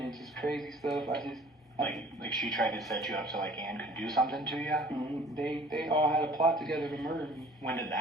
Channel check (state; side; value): normal; both; correlation 0.50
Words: just crazy stuff. Like she tried to set you up so Ann could do something to you? They all had a plot together to murder me. When did